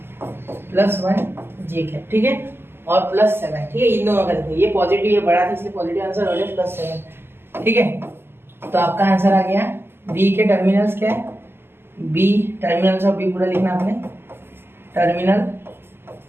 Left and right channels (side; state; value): left; late; 0.11 ms